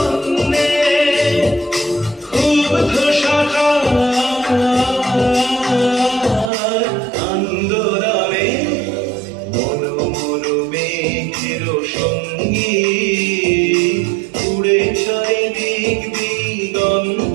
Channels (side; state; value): left; drops out; at 6.5 s